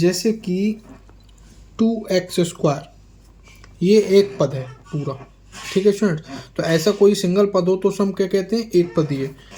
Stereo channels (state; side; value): identical; both; correlation 1.00